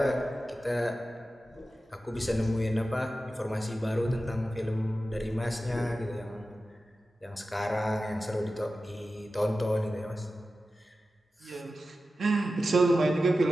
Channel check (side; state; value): both; normal; correlation 0.93